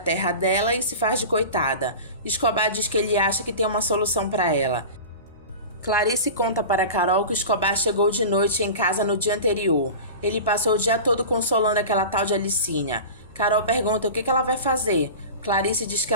dela e se faz de coitada. Escobar diz que ele acha que tem uma solução pra ela. Clarice conta para Carol que Escobar chegou de noite em casa no dia anterior. Ele passou o dia todo consolando aquela tal de Alicinha. Carol pergunta o que ela vai fazer. Clarice diz que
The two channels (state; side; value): inverted; both; correlation -0.32